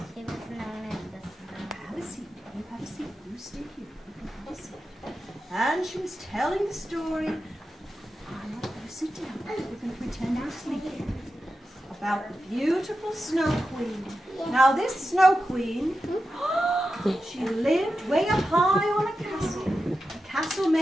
She was known as the Snow. Have a seat. You have a seat. You stay here. You can have a seat. And she was telling the story. I'm not going to sit down. We're going to pretend we're sleeping. About the beautiful Snow Queen. Now this Snow Queen, she lived way up high on a castle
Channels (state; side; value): normal; both; correlation 0.91